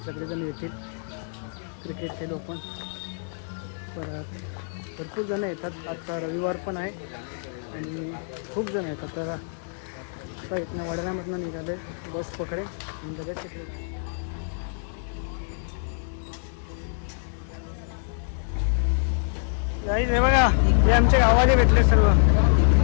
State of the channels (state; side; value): silent; right; digital silence